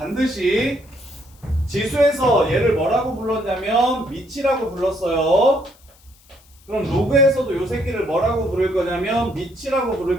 지수에서 얘를 뭐라고 불렀냐면 미치라고 불렀어요. 그럼 로그에서도 요 새끼를 뭐라고 부를 거냐면 미치라고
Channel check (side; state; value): left; noise; hiss, 29 dB below the sound